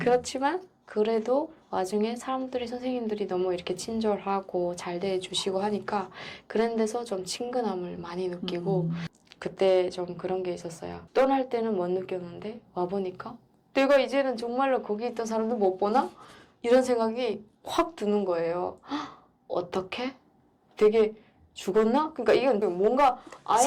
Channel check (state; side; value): identical; both; correlation 1.00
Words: 그래도 와중에 사람들이 선생님들이 너무 이렇게 친절하고 잘 대해주시고 하니까 그런 데서 좀 친근함을 많이 느끼고 그때 좀 그런 게 있었어요. 떠날 때는 못 느꼈는데 와보니까 내가 이제는 정말로 거기 있던 사람들 못 보나? 이런 생각이 확 드는 거예요. 어떻게? 되게 죽었나? 그러니까 이건 뭔가